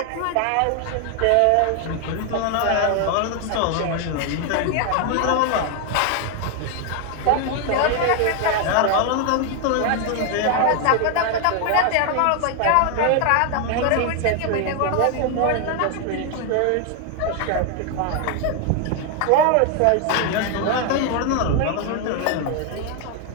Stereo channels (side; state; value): both; different; correlation 0.01